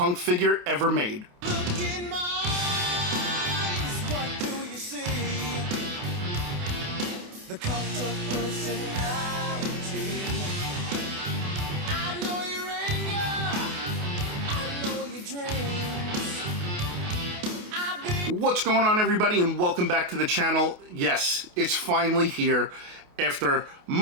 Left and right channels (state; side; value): late; left; 28 ms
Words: figure ever made. Look in my eyes, what do you see? The cult of personality. I know your anger, I know your dreams. What's going on, everybody, and welcome back to the channel. Yes, it's finally here. After